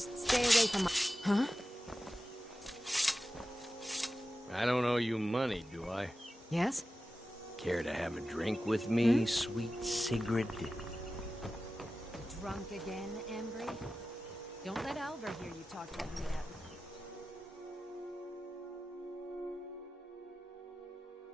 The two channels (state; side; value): normal; both; correlation 0.94